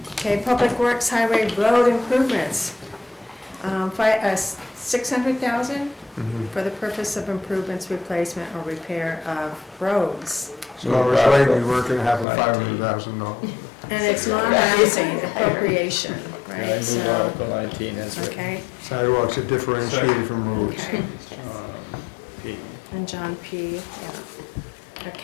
Okay, Public Works Highway Road Improvements. 600,000 for the purpose of improvements, replacement, or repair of roads. So I was right, we weren't gonna have a $500,000. And it's non-housing appropriation, I right? move So, Article 19 as written. okay, Sidewalks are differentiated from roads. okay. P. And John P., yeah.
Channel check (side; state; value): right; drops out; at 12.2 s